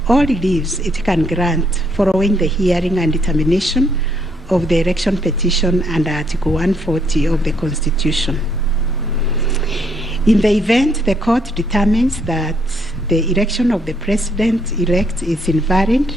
or reliefs it can grant following the hearing and determination of the election petition under Article 140 of the Constitution. In the event the court determines that the election of the President-elect is invalid,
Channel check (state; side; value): normal; both; correlation 0.71